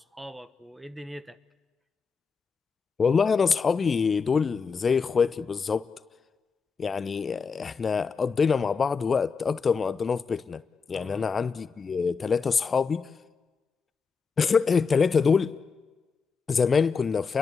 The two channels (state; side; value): quieter; right; 5.4 dB